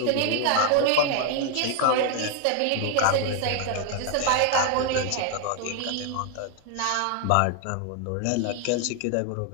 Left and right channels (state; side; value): different; both; correlation 0.01